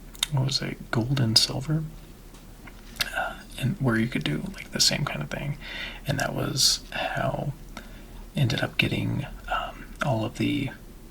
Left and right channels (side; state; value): both; identical; correlation 1.00